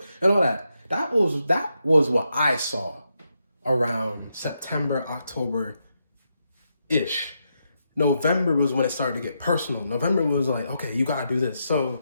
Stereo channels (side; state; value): both; inverted; correlation -0.83